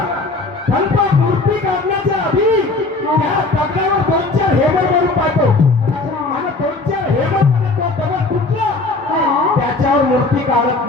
पण तो मूर्ती काढण्याच्या आधी त्या दगडावर 2-4 हेमर मारून पाहतो अच्छा. आणि 2-4 हेमर मध्ये तो दगड तुटला हा. त्याच्यावर मूर्ती काढत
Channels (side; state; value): right; quieter; 3.4 dB